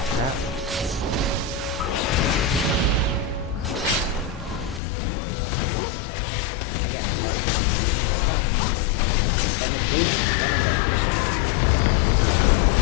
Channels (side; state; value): right; drops out; at 4.8 s